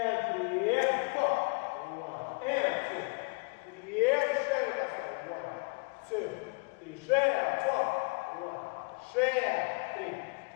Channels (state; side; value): quieter; right; 32.6 dB